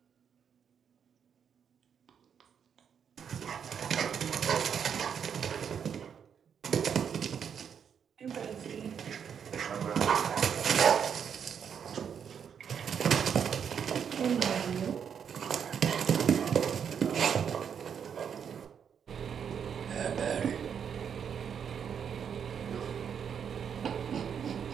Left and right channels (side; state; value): left; quieter; 7.6 dB